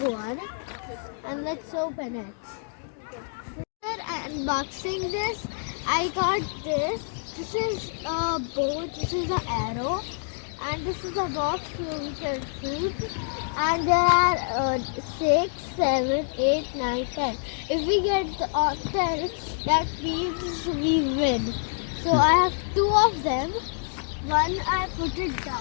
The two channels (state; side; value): silent; right; digital silence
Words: one, and let's open it. After unboxing this, I got this. This is a bow. This is an arrow. And this is a box where we can shoot. And there are 6, 7, 8, 9, 10. If we get 10, that means we win. So I have 2 of them. One I put it down